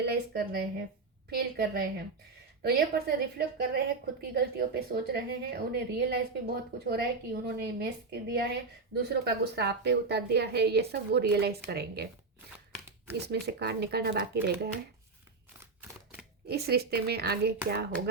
कर रहे हैं, फील कर रहे हैं। तो ये पर्सन रिफ्लेक्ट कर रहे हैं, खुद की गलतियों पे सोच रहे हैं, उन्हें रियलाइज भी बहुत कुछ हो रहा है कि उन्होंने मिस कर दिया है, दूसरों का गुस्सा आप पे उतार दिया है, ये सब वो रियलाइज करेंगे। इसमें से कार्ड निकालना बाकी रह गया है। इस रिश्ते में आगे क्या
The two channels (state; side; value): quieter; left; 4.1 dB